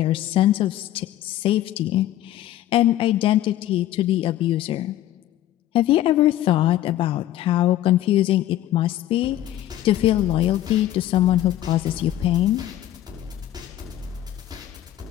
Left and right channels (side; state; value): right; quieter; 13.2 dB